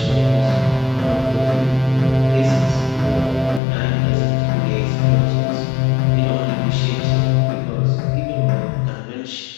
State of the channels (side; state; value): right; drops out; at 3.6 s